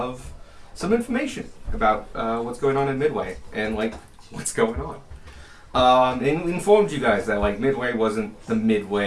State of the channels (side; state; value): both; identical; correlation 1.00